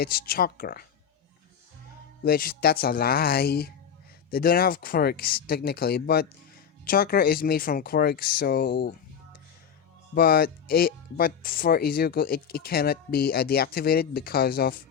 chakra. Which that's a lie. They don't have quirks technically, but chakra is made from quirks, so but for Izuku it cannot be deactivated because of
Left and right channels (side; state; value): right; quieter; 7.7 dB